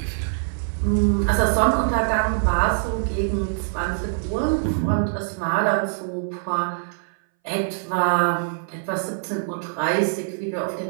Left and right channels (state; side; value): silent; left; 61 dB below the other